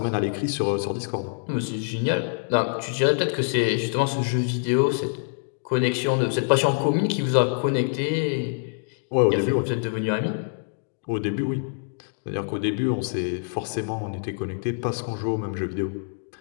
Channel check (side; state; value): right; silent; digital silence